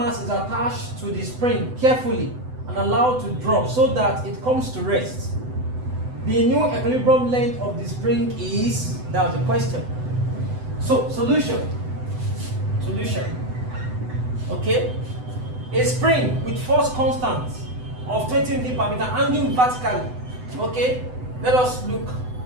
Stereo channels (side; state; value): left; late; 7.9 ms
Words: is attached to the spring carefully and allowed to drop so that it comes to rest. The new equilibrium length of the spring is, that was the question. So, solution. Okay? A spring with force constant of 20 Newton per meter hanging vertically. Okay? Let us look